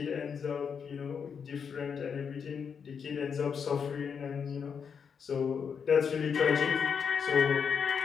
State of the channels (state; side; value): quieter; right; 6.7 dB